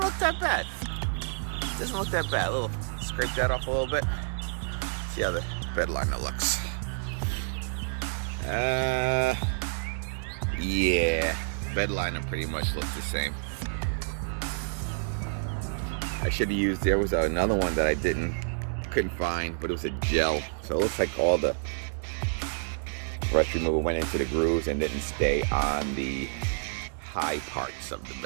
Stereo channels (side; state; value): left; silent; digital silence